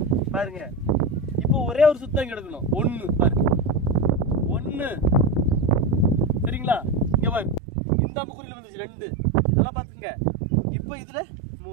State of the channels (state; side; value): drops out; left; at 7.6 s